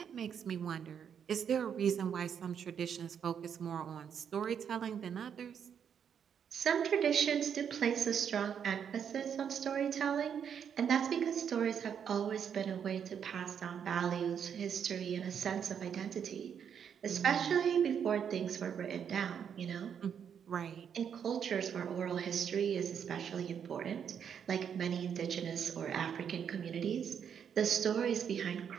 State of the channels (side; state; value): left; quieter; 7.9 dB